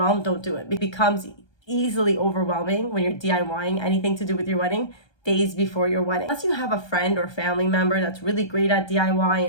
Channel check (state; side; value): late; right; 1.2 ms